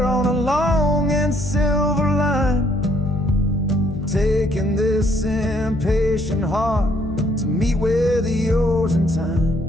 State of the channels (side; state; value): left; noise; hum, 11 dB below the sound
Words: on a long and silver line, taking this impatient heart to meet with yours in